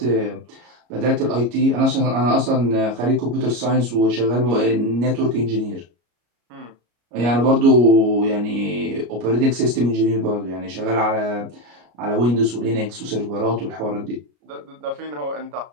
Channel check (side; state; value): left; late; 33 ms